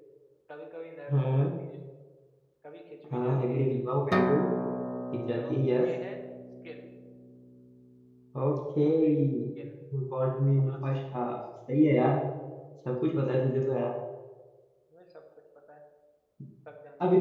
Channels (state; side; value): identical; both; correlation 1.00